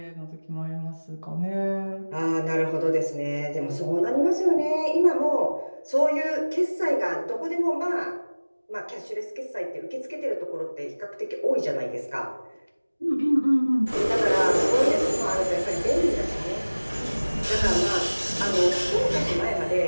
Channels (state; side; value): inverted; both; correlation -1.00